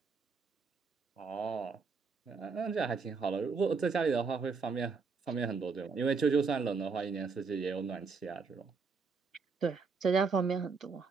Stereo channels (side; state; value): left; quieter; 5.0 dB